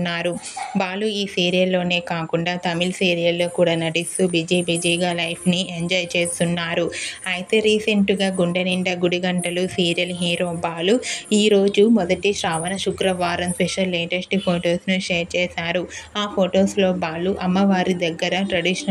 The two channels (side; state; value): both; identical; correlation 1.00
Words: బాలు ఈ సీరియల్లోనే కాకుండా తమిళ్ సీరియల్లో కూడా నటిస్తూ బిజీగా లైఫ్ని ఎంజాయ్ చేస్తున్నారు. అయితే రీసెంట్గా గుండె నిండా గుడిగంటలు సీరియల్ హీరో బాలు ఈరోజు మొదటి శ్రావణ శుక్రవారం స్పెషల్ లేటెస్ట్ ఫొటోస్ను షేర్ చేశారు. ఆ ఫొటోస్లో బాలు అమ్మవారి దగ్గర